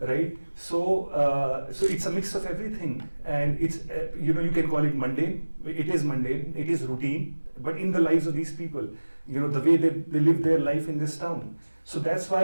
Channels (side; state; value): both; inverted; correlation -1.00